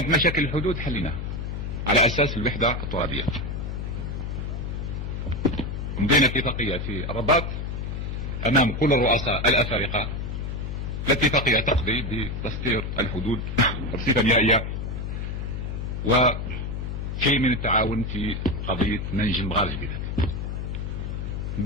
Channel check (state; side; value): noise; left; hum, 4 dB below the sound